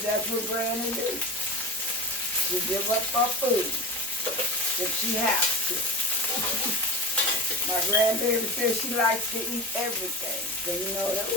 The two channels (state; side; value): normal; both; correlation 0.29